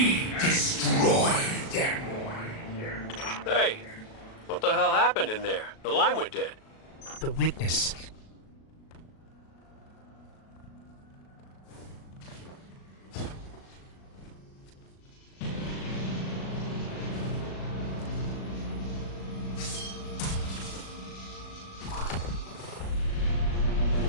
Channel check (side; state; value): right; late; 37 ms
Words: destroyed. Hey, what the hell happened in there? The line went dead. The witness.